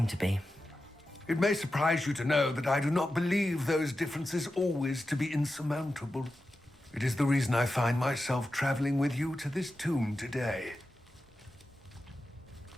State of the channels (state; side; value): normal; both; correlation 0.92